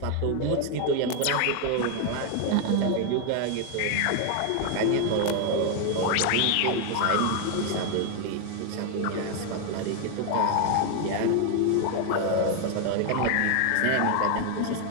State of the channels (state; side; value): different; both; correlation 0.01